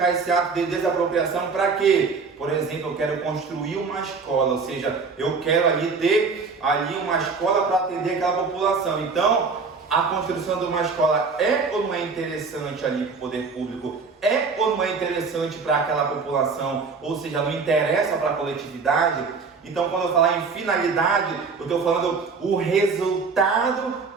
esse ato de desapropriação para quê? Por exemplo, eu quero construir uma escola, ou seja, eu quero ali ter ali uma escola para atender aquela população. Então, a construção de uma escola é ou não é interessante ali para o poder público? É ou não é interessante para aquela população? Ou seja, não interessa para a coletividade? Então, quando eu falar em finalidade, eu estou falando o resultado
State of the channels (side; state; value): left; quieter; 4.8 dB